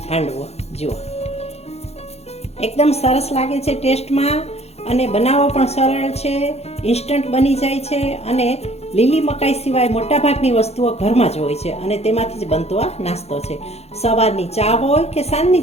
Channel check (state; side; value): late; right; 0.31 ms